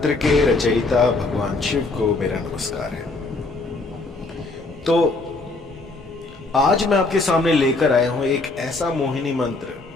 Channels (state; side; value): quieter; right; 3.3 dB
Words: के रचयिता भगवान शिव को मेरा नमस्कार है। तो आज मैं आपके सामने लेकर आया हूं एक ऐसा मोहिनी